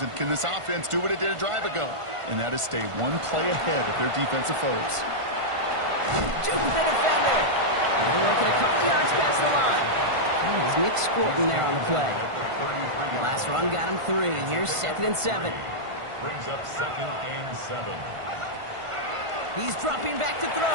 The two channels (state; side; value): late; left; 1.5 ms